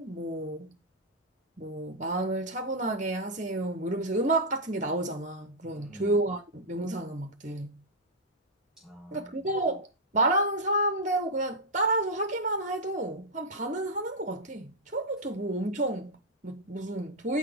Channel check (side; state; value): both; normal; correlation -0.05